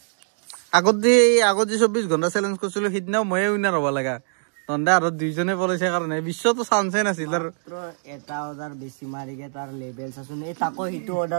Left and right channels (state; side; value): silent; left; digital silence